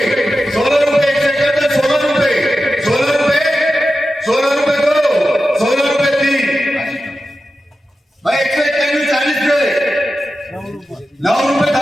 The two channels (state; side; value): normal; both; correlation 0.92